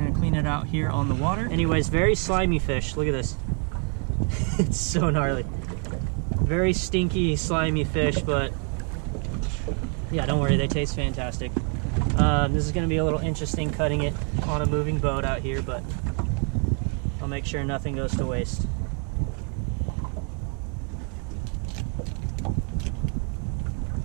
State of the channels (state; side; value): quieter; left; 39.3 dB